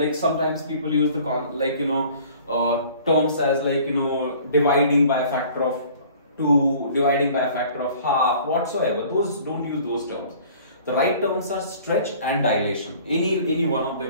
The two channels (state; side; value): inverted; both; correlation -0.50